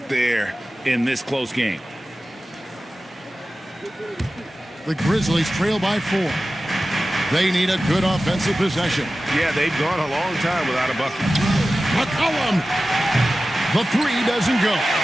there in this close game. The Grizzlies trail by 4. They need a good offensive possession. Yeah, they've gone a long time without a bucket. McCollum. The 3 doesn't go.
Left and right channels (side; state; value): both; normal; correlation 0.95